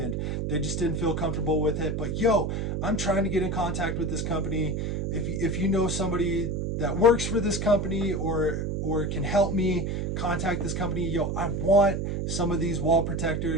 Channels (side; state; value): right; noise; hum, 1 dB below the sound